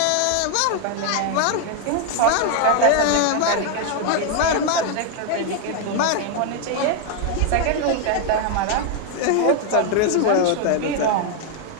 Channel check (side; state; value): both; different; correlation 0.01